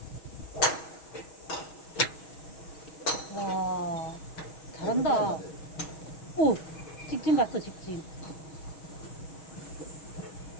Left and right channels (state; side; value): late; right; 6.3 ms